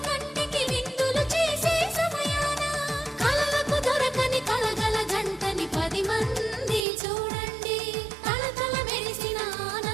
కంటికి విందులు చేసే సమయాన కలలకు దొరకని కలగల జంటని 10 మంది చూడండి తలతల మెరిసిన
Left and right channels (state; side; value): drops out; left; at 6.9 s